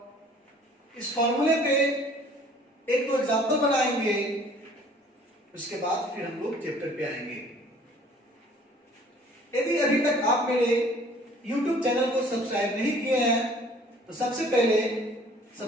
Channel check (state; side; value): normal; both; correlation 0.54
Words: इस फॉर्मूले पे एक दो एग्जांपल बनाएंगे। उसके बाद फिर हम लोग चैप्टर पे आएंगे। यदि अभी तक आप मेरे YouTube चैनल को सब्सक्राइब नहीं किए हैं तो सबसे पहले